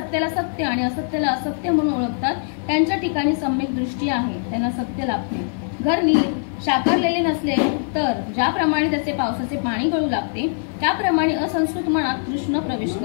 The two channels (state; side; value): silent; right; 61 dB below the other